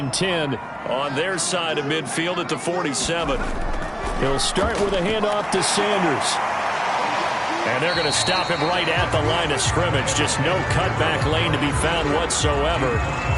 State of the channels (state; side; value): identical; both; correlation 1.00